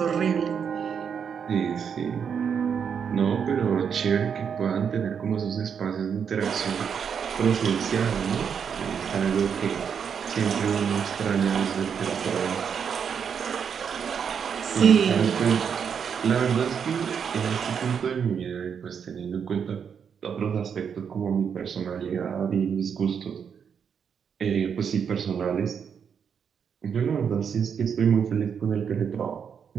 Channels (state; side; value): quieter; left; 7.2 dB